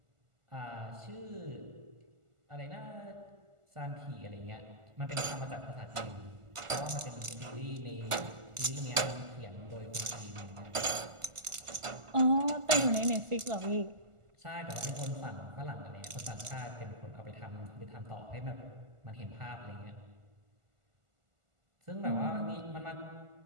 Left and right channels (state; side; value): late; left; 1.4 ms